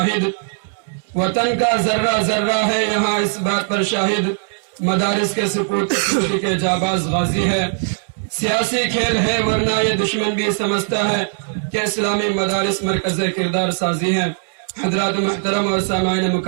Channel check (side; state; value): left; silent; 66 dB below the other